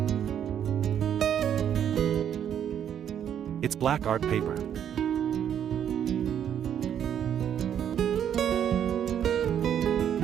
It's black art paper.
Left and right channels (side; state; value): left; quieter; 9.3 dB